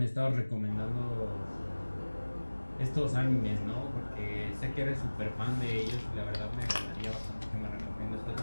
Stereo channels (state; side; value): inverted; both; correlation -1.00